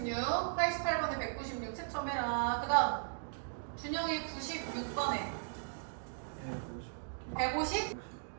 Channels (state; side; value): silent; left; digital silence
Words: 88번에 196 채점해라. 그 다음 준영이 96번에 150?